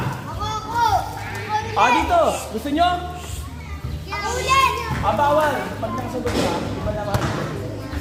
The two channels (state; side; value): identical; both; correlation 1.00